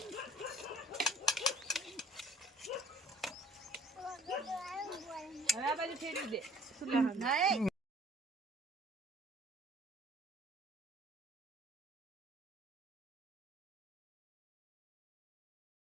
હવે આ બાજુ ફેરવી દે.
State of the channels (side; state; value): both; normal; correlation 0.54